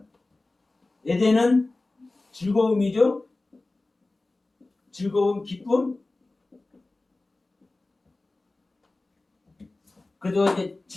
에덴은 즐거움이죠. 즐거움, 기쁨. 그래도 이제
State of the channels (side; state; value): right; quieter; 3.1 dB